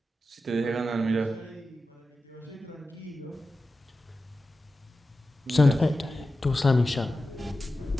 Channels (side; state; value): both; normal; correlation 0.93